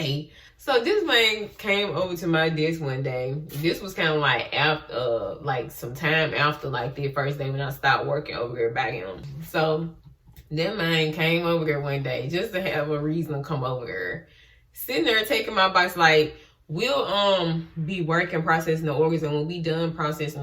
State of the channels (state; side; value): identical; both; correlation 1.00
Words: So this man came over to my desk one day. This was kind of like after, like some time after like the first day when I stopped working over there back him. So that man came over there one day just to have a reason to come over there. Sitting there taking my box, like, we'll be working processing the organs, and when we done